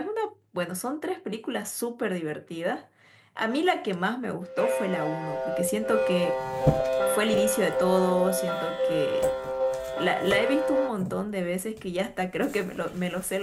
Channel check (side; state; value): both; identical; correlation 1.00